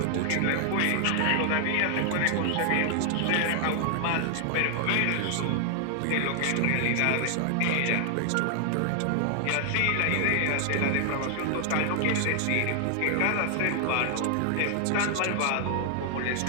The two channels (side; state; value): both; different; correlation 0.00